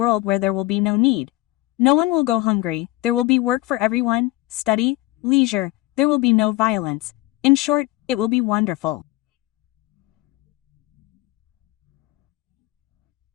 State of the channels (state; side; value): quieter; right; 18.7 dB